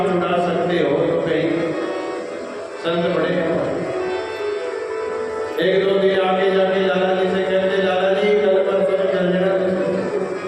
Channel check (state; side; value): identical; both; correlation 1.00